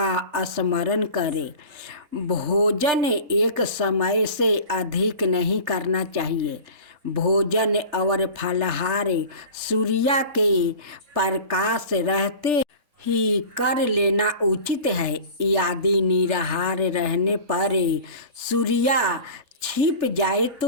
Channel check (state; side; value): late; left; 3.4 ms